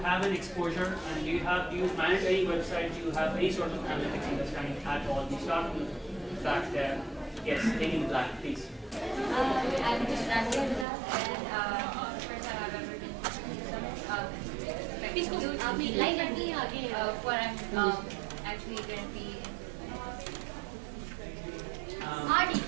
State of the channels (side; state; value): left; drops out; at 10.9 s